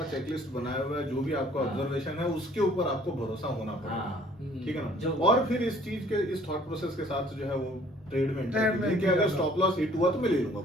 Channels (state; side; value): normal; both; correlation 0.56